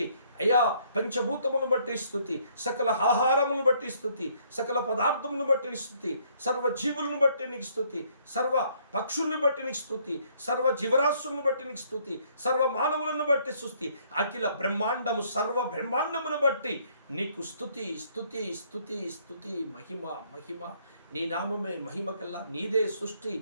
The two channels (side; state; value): both; inverted; correlation -0.65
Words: అయ్యా పంచభూతములను బట్టి స్తుతి, సకల ఆహారములను బట్టి స్తుతి, సకల పదార్థములను బట్టి స్తుతి, సర్వ జీవులను బట్టి నీకు స్తుతి, సర్వ పక్షుల్ని బట్టి నీకు స్తుతి, సర్వ జీవరాశులను బట్టి నీకు స్తుతి, సర్వ మానవులను బట్టి స్తుతి, అఖిల బ్రహ్మాండము సర్వ బ్రహ్మాండమును బట్టి నీకు స్తుతి స్తుతి స్తుతి స్తుతి. మహిమ మహిమ, నీ నామమే మహిమ కల్లా. నీదే సృష్టి,